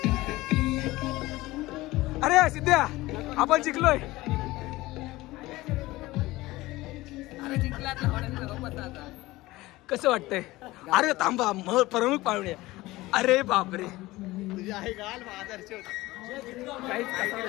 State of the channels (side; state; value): right; quieter; 19.0 dB